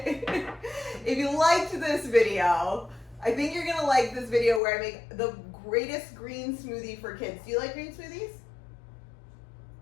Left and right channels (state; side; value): drops out; right; at 4.6 s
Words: If you liked this video, I think you're gonna like this video where I make the greatest green smoothie for kids. Do you like green smoothies?